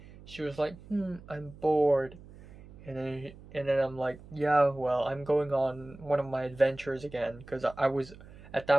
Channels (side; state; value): right; noise; hum, 19 dB below the sound